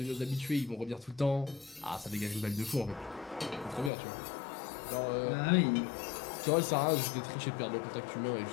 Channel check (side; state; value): right; drops out; at 3.9 s